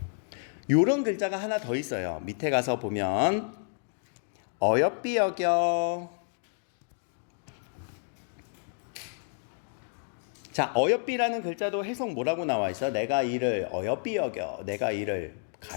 요런 글자가 하나 더 있어요. 밑에 가서 보면 어여삐 여겨. 자, 어여삐라는 글자도 해석 뭐라고 나와 있어? 내가 이를 어여삐 여겨. 내가 이를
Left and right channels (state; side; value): silent; right; digital silence